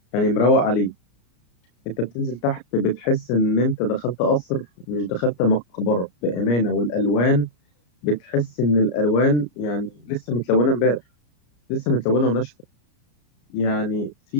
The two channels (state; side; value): late; right; 34 ms